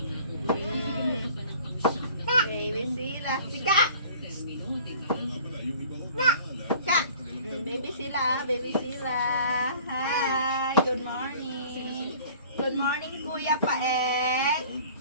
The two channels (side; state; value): both; inverted; correlation -0.48